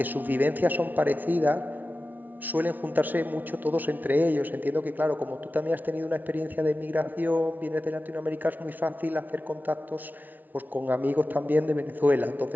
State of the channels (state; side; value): late; left; 0.083 ms